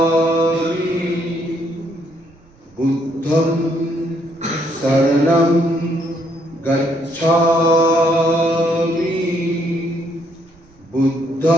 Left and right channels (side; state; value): right; noise; rumble, 29 dB below the sound